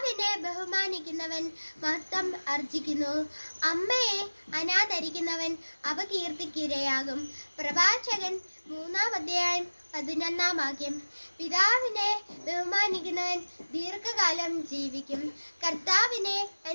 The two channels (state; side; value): inverted; both; correlation -1.00